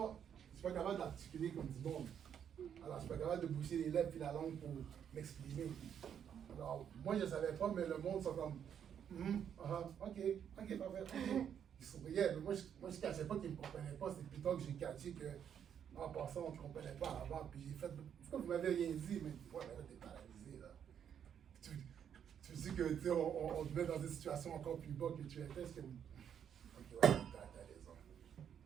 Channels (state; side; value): quieter; left; 8.6 dB